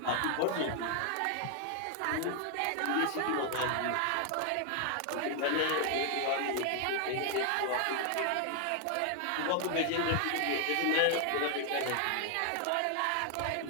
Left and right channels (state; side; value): different; both; correlation 0.00